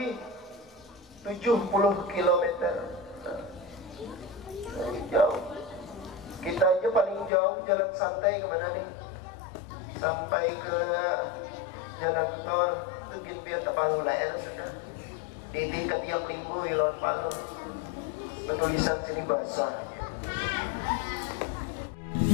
70 kilometer. Jauh. Kita aja paling jauh jalan santai kemana nih? Sampai ke jalan tol itu Ginpia Tapalu Laer sudah. Di ketiak minggu Ilon Palu. Tulisan sini basah.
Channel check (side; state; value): right; drops out; at 7.3 s